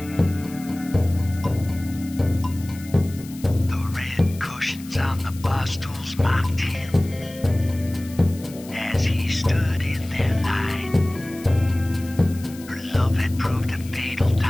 red cushions on the bar stools mocked him as he stood in their line. Her love had proved a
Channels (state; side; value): noise; left; hiss, 19 dB below the sound